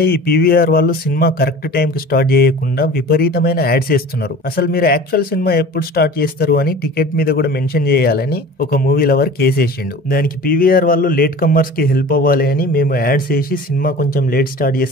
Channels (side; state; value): both; normal; correlation 0.40